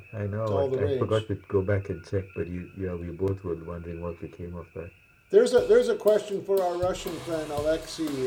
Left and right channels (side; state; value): both; identical; correlation 1.00